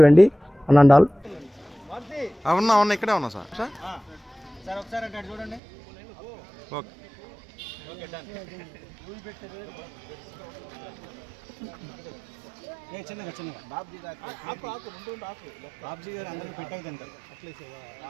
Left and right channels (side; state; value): left; drops out; at 5.6 s